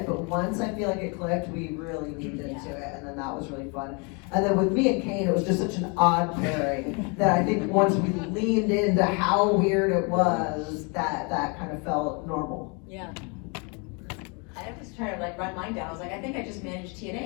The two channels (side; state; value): right; quieter; 32.9 dB